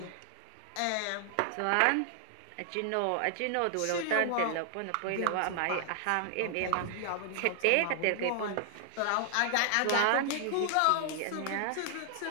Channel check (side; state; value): both; different; correlation 0.00